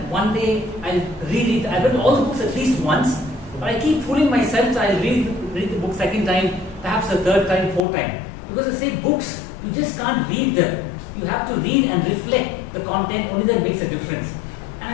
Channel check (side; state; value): right; drops out; at 7.8 s